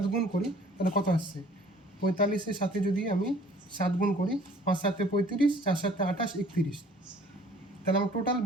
গুণ করি তাহলে কত আসছে? 45-এর সাথে যদি আমি 7 গুণ করি, 5 × 7 = 35, 4 × 7 = 28, 31। তাহলে আমার টোটাল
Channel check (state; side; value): normal; both; correlation 0.54